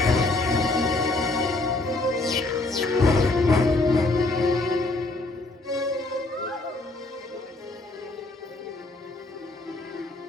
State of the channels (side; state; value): right; quieter; 3.0 dB